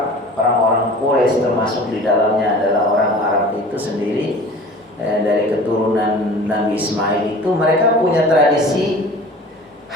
orang-orang Quraisy termasuk di dalamnya adalah orang Arab itu sendiri dari keturunan Nabi Ismail itu mereka punya tradisi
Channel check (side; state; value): both; normal; correlation 0.42